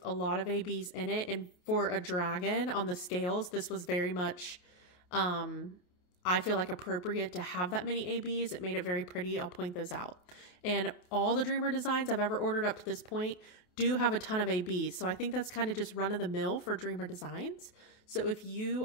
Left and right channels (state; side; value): late; right; 28 ms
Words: a lot of ABs in it. And for a dragon on the scales, this was very much, I feel like, appropriate to have that many ABs. It made it very pretty. I'll point those out. And all the Dreamer Designs I've ever ordered up to this point do have a ton of ABs. So I think that's kind of just run of the mill for Dreamer Designs. So if you